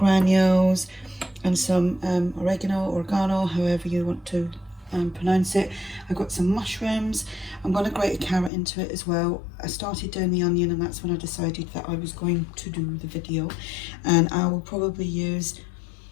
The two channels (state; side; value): drops out; right; at 8.5 s